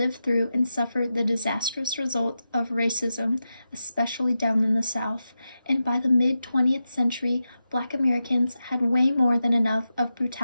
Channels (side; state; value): both; inverted; correlation -0.90